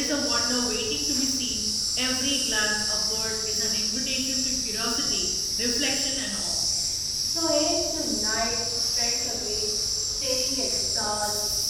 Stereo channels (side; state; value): both; identical; correlation 1.00